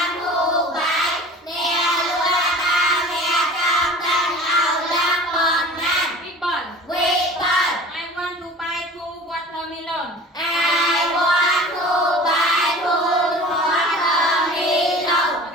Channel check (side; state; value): both; normal; correlation 0.41